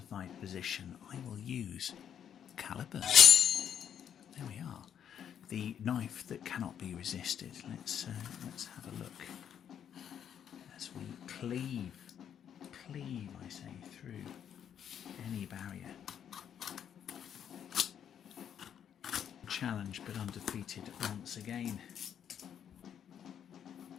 position? I will use calibers. There we are. The knife that cannot be resisted. Let's have a look as we cleave, I say, through any barrier. Challenged but undefeated once again.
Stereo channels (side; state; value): right; quieter; 8.9 dB